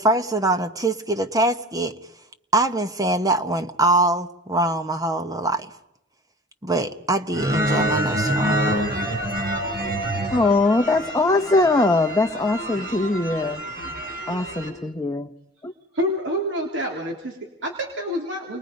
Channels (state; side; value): normal; both; correlation 0.43